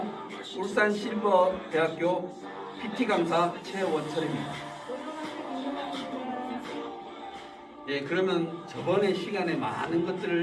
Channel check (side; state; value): both; identical; correlation 1.00